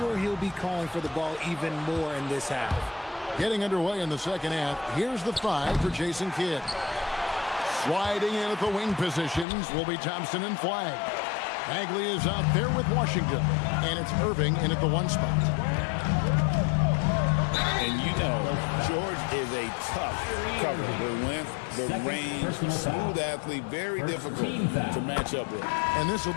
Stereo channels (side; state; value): right; drops out; at 9.5 s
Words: he'll be calling for the ball even more in this half. Getting underway in the second half, here's the 5 for Jason Kidd. Sliding in at the wing positions will be Thompson and Flagg. Bagley is out there with Washington, and it's Irving in at the 1 spot. And you know, George is a tough cover. The length, the range, smooth athlete, very difficult to match up with. And this will